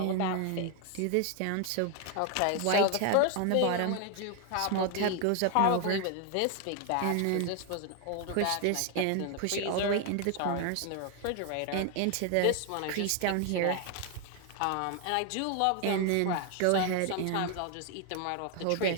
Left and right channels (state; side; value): different; both; correlation 0.01